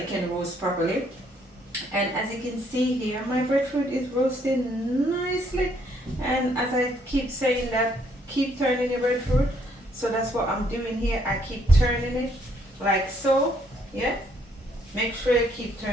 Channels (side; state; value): both; normal; correlation 0.69